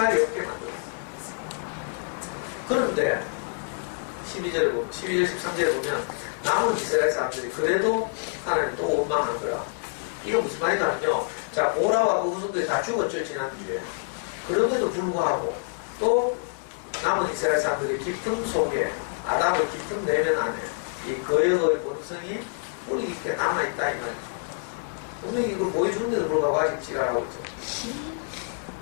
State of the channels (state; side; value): silent; right; digital silence